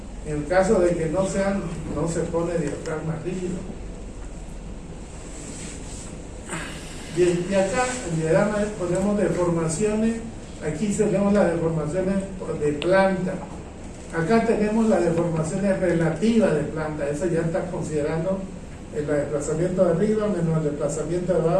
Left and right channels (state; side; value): identical; both; correlation 1.00